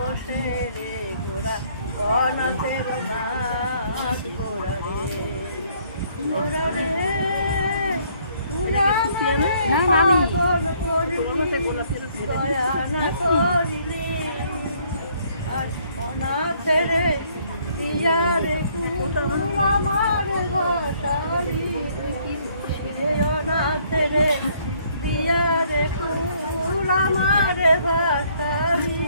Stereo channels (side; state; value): both; inverted; correlation -0.64